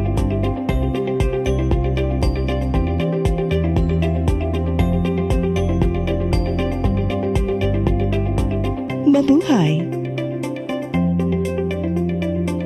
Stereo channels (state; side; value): identical; both; correlation 1.00